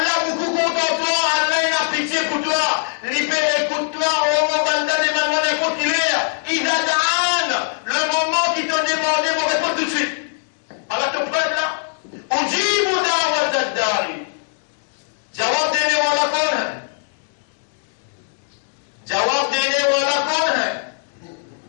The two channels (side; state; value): right; silent; 65 dB below the other